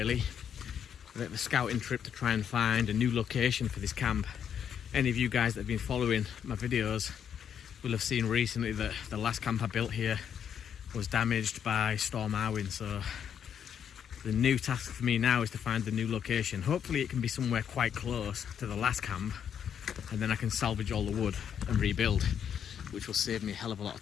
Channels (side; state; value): right; quieter; 8.4 dB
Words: A bit of a scouting trip to try and find a new location for this camp. Any of you guys that have been following my videos will have seen recently that the last camp I built here was damaged by Storm Arwen. So the new task for me now is to find the new location. Hopefully it can be somewhere quite close to the last camp, and then I can salvage all the wood and rebuild, which will save me a hell of a lot